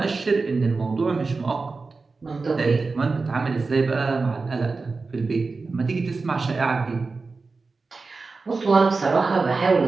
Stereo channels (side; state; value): left; quieter; 4.1 dB